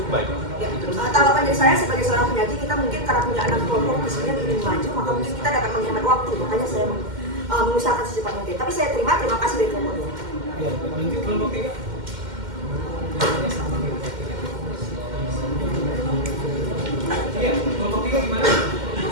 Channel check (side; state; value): left; late; 2.1 ms